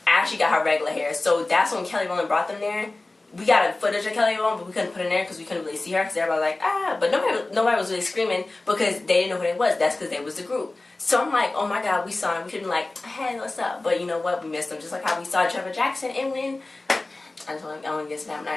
Ashley got her regular hair. So that's when Kelly Rowland brought them there. We got a footage of Kelly Rowland, but we couldn't put it in there because we couldn't really see her because everybody was like, ah. But nobody was really screaming because they didn't know who they was. That's because they was the group. So I'm like, oh my God, we saw him. We couldn't like, hey, what's up? But you know what? We missed them. Just like how we saw Trevor Jackson and when I don't get snapped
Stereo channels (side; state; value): right; quieter; 3.0 dB